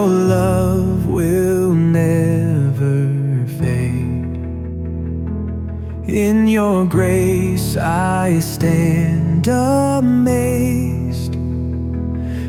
love will never fade. In your grace I stand amazed.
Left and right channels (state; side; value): identical; both; correlation 1.00